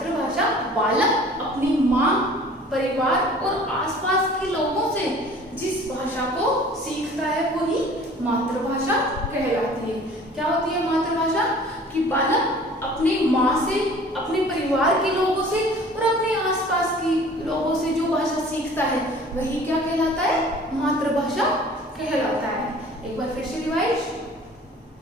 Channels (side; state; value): both; normal; correlation 0.48